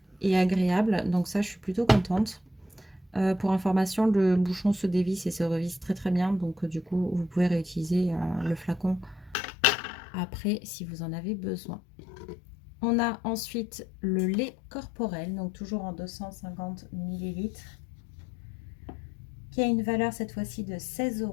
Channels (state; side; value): drops out; right; at 9.3 s